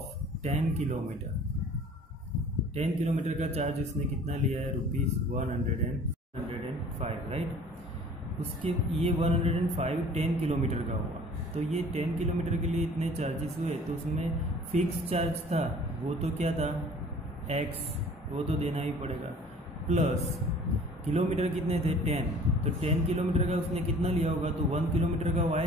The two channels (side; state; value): both; normal; correlation 0.49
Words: 10 kilometre. 10 kilometre का चार्ज इसने कितना लिया है ₹105, राइट। उसके ये 105 10 किलोमीटर का हुआ, तो ये 10 किलोमीटर के लिए इतने चार्जेस हुए। तो उसमें फिक्स चार्ज था वो तो क्या था X, वो तो देना ही पड़ेगा, प्लस किलोमीटर कितने थे 10। तो 10 किलोमीटर का उसने कितना लिया होगा, तो 1 किलोमीटर का